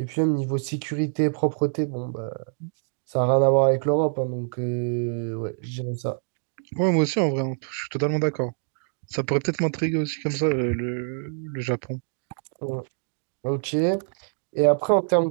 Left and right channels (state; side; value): silent; left; 61 dB below the other